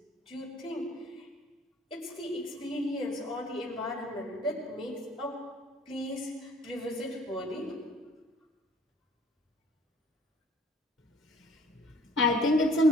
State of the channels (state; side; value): normal; both; correlation 0.55